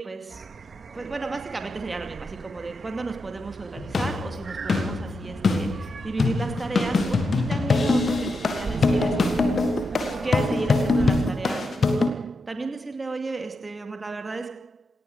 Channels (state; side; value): normal; both; correlation 0.86